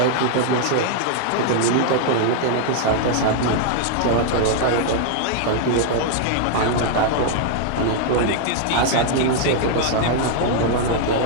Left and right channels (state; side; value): different; both; correlation -0.01